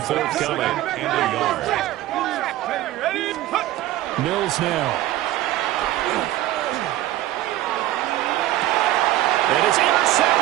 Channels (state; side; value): quieter; left; 14.8 dB